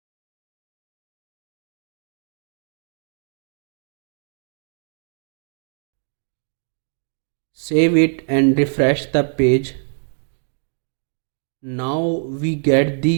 Save it and refresh the page. Now we get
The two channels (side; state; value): left; silent; digital silence